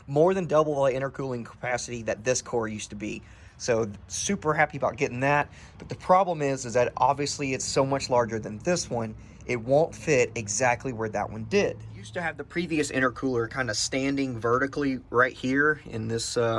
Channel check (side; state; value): both; identical; correlation 1.00